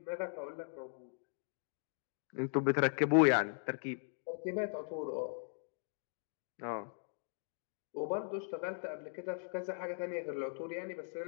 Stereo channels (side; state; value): right; silent; digital silence